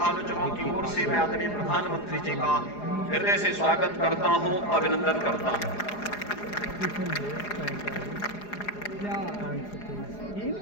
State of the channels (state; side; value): late; right; 4.8 ms